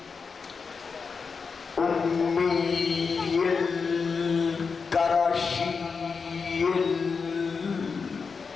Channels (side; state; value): right; quieter; 5.2 dB